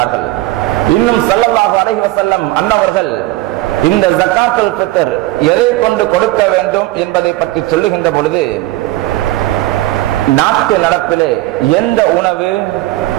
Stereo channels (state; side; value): quieter; left; 17.6 dB